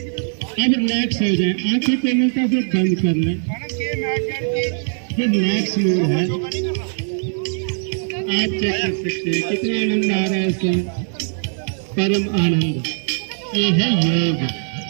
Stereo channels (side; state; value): left; silent; digital silence